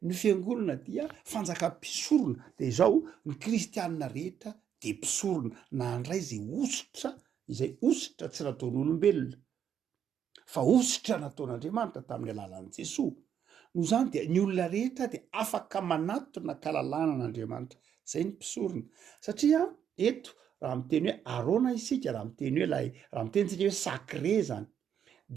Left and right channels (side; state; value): left; quieter; 8.7 dB